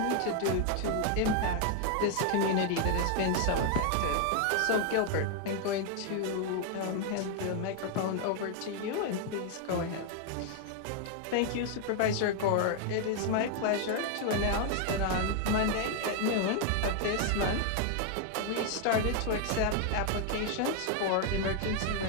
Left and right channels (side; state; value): both; different; correlation 0.00